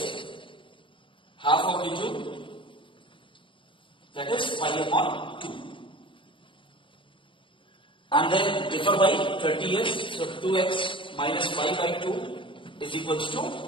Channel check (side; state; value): right; late; 0.25 ms